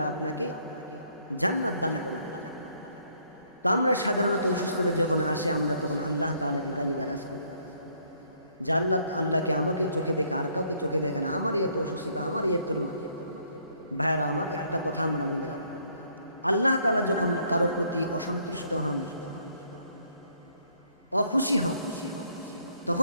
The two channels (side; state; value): both; inverted; correlation -0.67